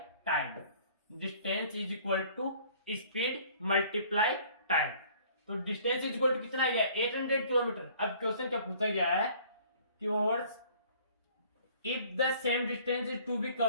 time, distance is equal to speed multiply time, तो डिस्टेंस इज इक्वल टू कितना आ गया 800 किलोमीटर। अब क्वेश्चन क्या पूछा गया है कि hours if the same distance is to be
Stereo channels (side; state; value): both; inverted; correlation -0.54